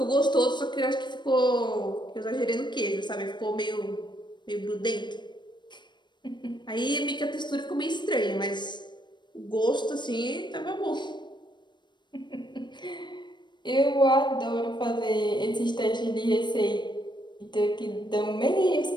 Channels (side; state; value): right; late; 0.22 ms